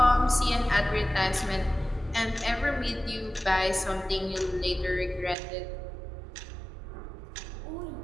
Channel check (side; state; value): left; drops out; at 5.4 s